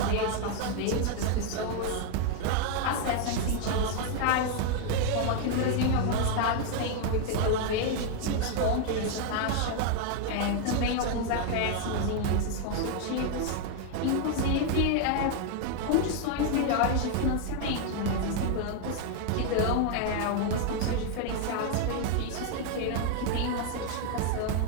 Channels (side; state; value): both; different; correlation 0.00